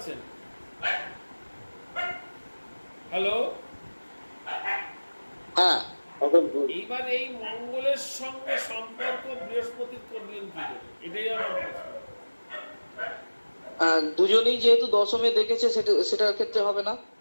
হ্যালো, হ্যাঁ, এইবার এই মঙ্গলের সঙ্গে সম্পর্ক বৃহস্পতির করলেন কি করে, এটাই আমার প্রশ্ন। দুজনেই যেহেতু দশমে দেখেছে সেটার ক্ষেত্রে হবে না।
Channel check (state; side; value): inverted; both; correlation -1.00